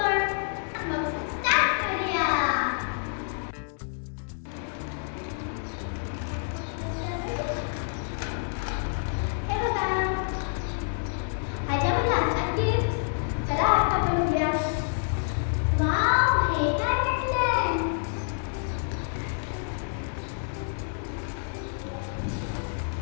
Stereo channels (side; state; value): right; silent; digital silence